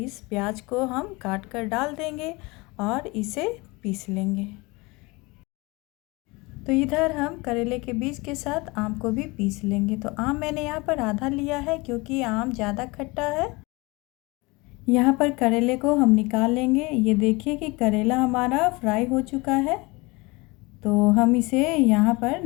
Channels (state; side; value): quieter; right; 24.8 dB